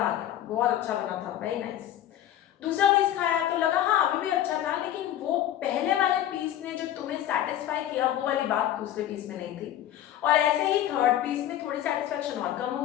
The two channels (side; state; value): right; quieter; 11.9 dB